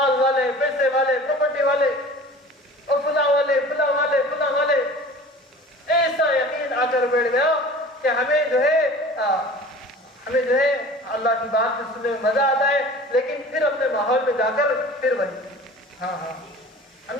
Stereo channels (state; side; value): normal; both; correlation 0.42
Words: والے, پیسے والے, پراپرٹی والے, اور فلاں والے, فلاں والے, فلاں والے, ایسا یقین آ کر بیٹھ گیا کہ ہمیں جو ہے اللہ کی بات سے سننے میں مزہ آتا ہے, لیکن پھر اپنے ماحول میں جا کر پھر وہی ہاں ہم